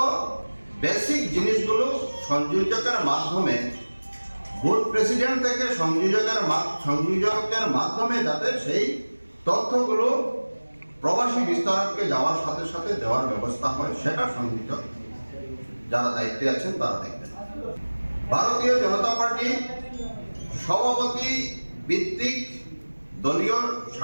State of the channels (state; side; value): inverted; both; correlation -1.00